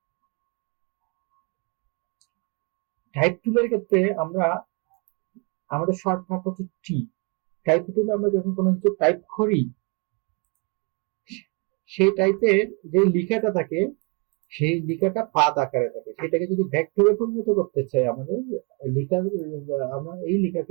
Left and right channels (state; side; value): quieter; left; 31.0 dB